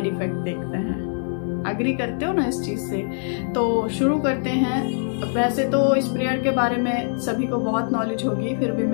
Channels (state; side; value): silent; right; 60 dB below the other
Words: इफेक्ट देखते हैं। अग्री करते हो ना इस चीज से? तो शुरू करते हैं। वैसे तो इस प्रेयर के बारे में सभी को बहुत नॉलेज होगी, फिर भी